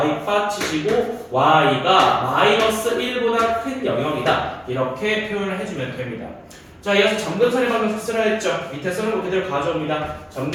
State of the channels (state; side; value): identical; both; correlation 1.00